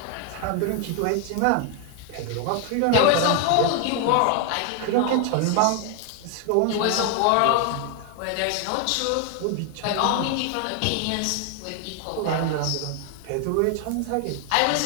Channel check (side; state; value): both; different; correlation 0.00